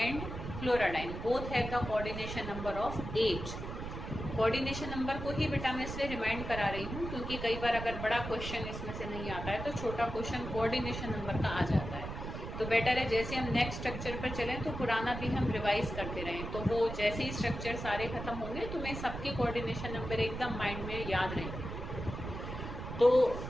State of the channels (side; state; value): right; noise; rumble, 7 dB below the sound